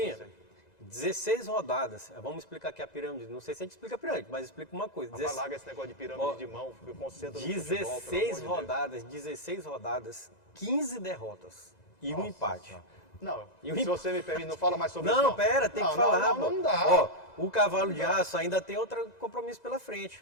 Não sei. 16 rodadas. Vamos explicar aqui a pirâmide. Não sei se a gente explica a pirâmide, mas explica uma coisa. Mas larga esse negócio de pirâmide de mão, eu concentro no futebol, 16 pelo amor de Deus. 16 rodadas, 15 derrotas e um Nossa empate. Senhora. Não, E o se você me permite, não fala mais sobre isso. Não, pera, tem que falar. Não pô. dá. Ó, o Cavalo de Aço ainda tem outro compromisso pela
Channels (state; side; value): late; right; 2.0 ms